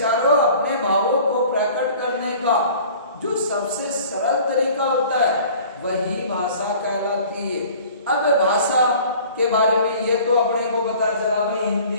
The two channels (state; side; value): inverted; both; correlation -0.48